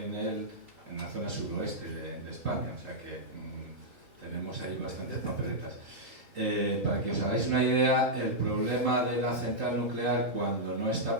la zona suroeste de España, o sea que tenemos ahí bastantes papeletas. Para que os hagáis una idea, el problema de la central nuclear cuando no está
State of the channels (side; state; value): left; late; 3.8 ms